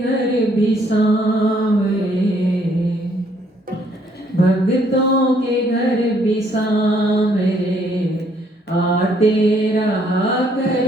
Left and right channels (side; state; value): both; normal; correlation 0.66